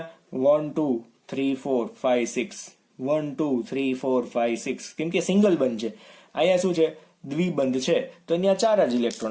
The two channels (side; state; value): both; identical; correlation 1.00